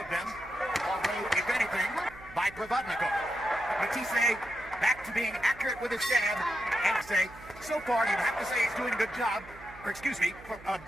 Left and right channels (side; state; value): right; noise; hum, 19 dB below the sound